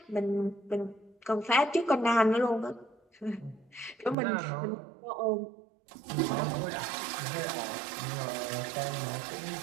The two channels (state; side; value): drops out; left; at 4.2 s